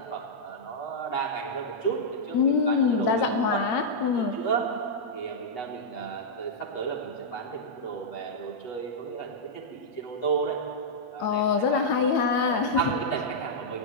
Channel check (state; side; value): late; right; 8.8 ms